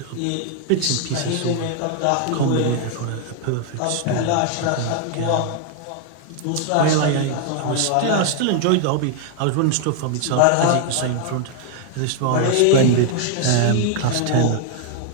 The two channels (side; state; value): both; different; correlation 0.00